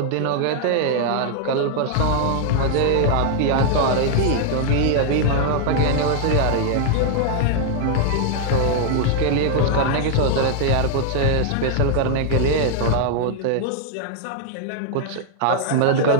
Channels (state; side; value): different; both; correlation 0.00